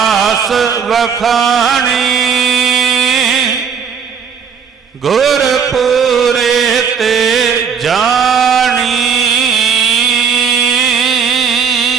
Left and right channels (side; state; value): left; quieter; 6.5 dB